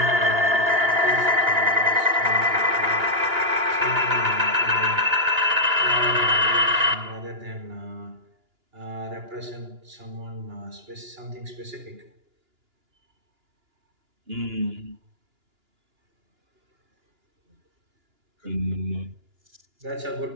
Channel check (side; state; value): left; late; 2.9 ms